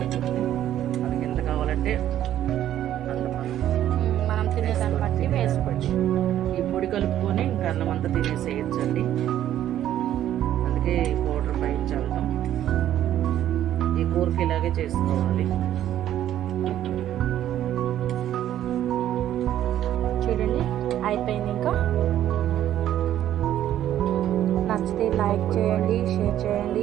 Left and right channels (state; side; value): quieter; left; 11.8 dB